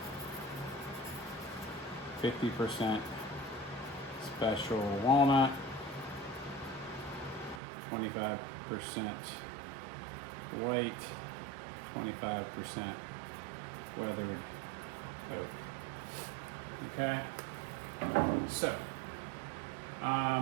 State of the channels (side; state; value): left; drops out; at 7.6 s